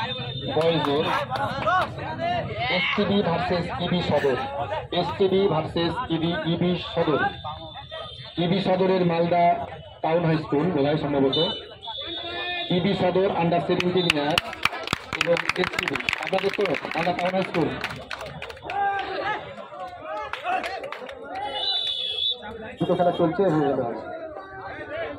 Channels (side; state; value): both; identical; correlation 1.00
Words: boys STB versus EB Sodor, STB versus EB Sodor, EB Sodorer Malda Town High School বোধহয় সম্ভবত EB Sodor under 17 years এবং STB আপনাদের তো Malda town high school দুটো খেলা চলছে হয়ে গেল